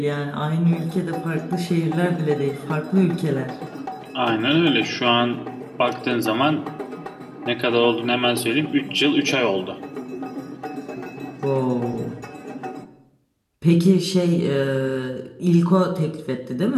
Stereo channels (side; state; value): both; identical; correlation 1.00